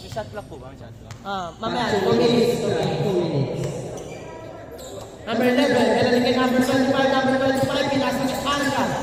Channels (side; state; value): both; identical; correlation 1.00